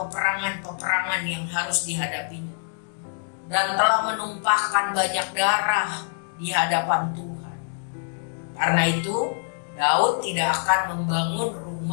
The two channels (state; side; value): silent; right; digital silence